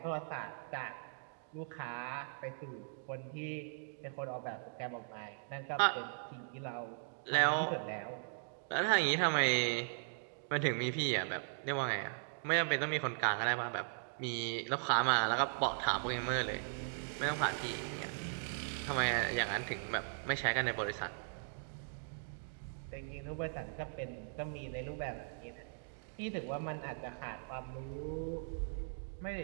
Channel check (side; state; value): left; silent; digital silence